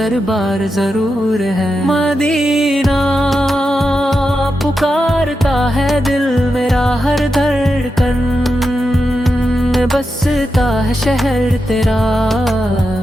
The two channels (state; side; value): normal; both; correlation 0.88